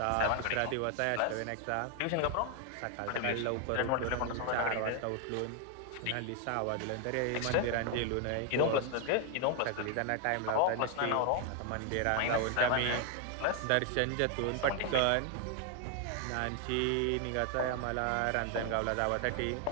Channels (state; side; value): different; both; correlation 0.00